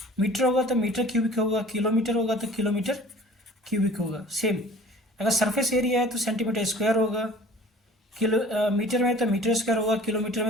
मीटर होगा तो मीटर क्यूबिक होगा, किलोमीटर होगा तो किलोमीटर क्यूबिक होगा। सेम अगर सरफेस एरिया है तो सेंटीमीटर स्क्वायर होगा, मीटर में तो मीटर स्क्वायर होगा, किलोमीटर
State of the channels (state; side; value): normal; both; correlation 0.47